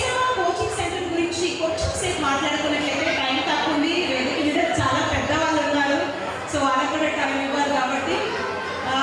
కోచింగ్ సెంటర్ గురించి కొంచెం సేపు మాట్లాడుకున్నట్లయితే టైం తక్కువ ఉంది, వేదిక మీద చాలా పెద్దవాళ్ళు ఉన్నారు, సో వాళ్ళకి కూడా టైం ఇవ్వాలి. కాబట్టి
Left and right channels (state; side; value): identical; both; correlation 1.00